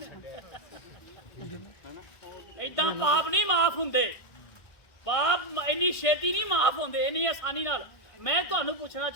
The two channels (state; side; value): late; right; 1.6 ms